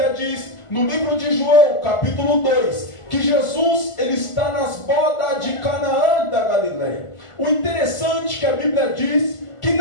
diz no livro de João, capítulo 2, que Jesus ele está nas bodas de Canaã da Galileia. O interessante é que a Bíblia diz que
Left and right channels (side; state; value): right; late; 1.5 ms